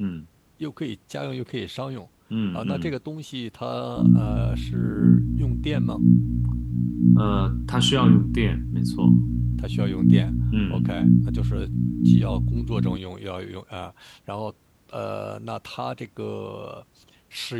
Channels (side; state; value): both; identical; correlation 1.00